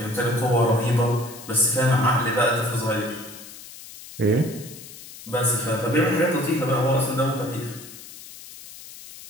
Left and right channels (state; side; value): noise; left; hiss, 16 dB below the sound